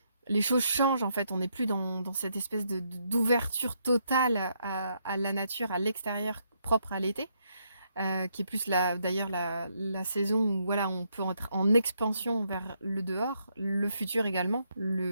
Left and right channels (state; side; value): inverted; both; correlation -0.76